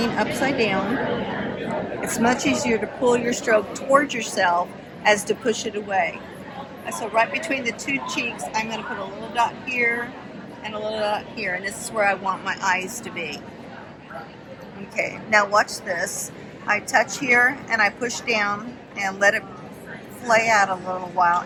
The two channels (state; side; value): identical; both; correlation 1.00